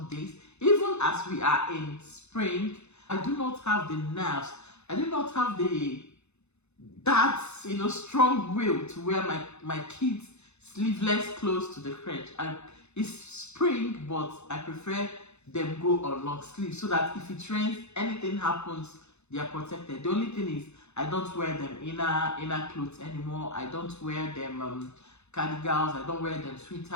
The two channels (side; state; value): right; late; 0.81 ms